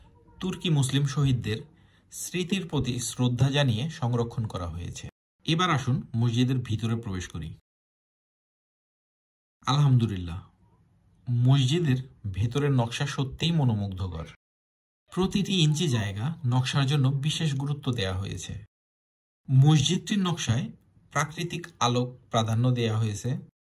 তুর্কি মুসলিম শহীদদের স্মৃতির প্রতি শ্রদ্ধা জানিয়ে সংরক্ষণ করা হয়েছে। এবার আসুন মসজিদের ভিতরে প্রবেশ করি। আলহামদুলিল্লাহ, মসজিদের ভেতরের নকশা সত্যিই মনোমুগ্ধকর। প্রতিটি ইঞ্চি জায়গা নকশার জন্য বিশেষ গুরুত্ব দেওয়া হয়েছে। মসজিদটির নকশায় প্রাকৃতিক আলোক প্রাধান্য দেওয়া হয়েছে।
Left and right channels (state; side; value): identical; both; correlation 1.00